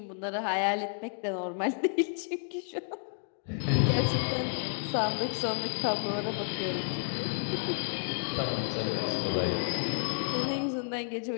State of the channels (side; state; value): right; silent; 57 dB below the other